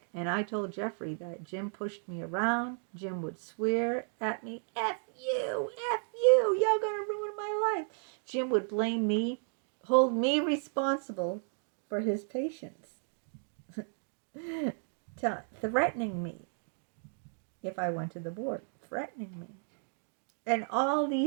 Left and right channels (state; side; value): silent; left; 55 dB below the other